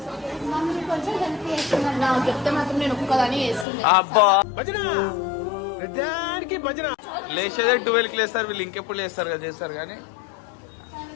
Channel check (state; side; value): drops out; right; at 3.7 s